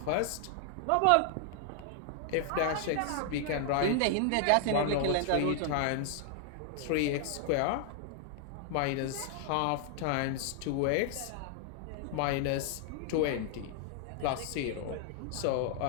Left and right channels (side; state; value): both; different; correlation 0.00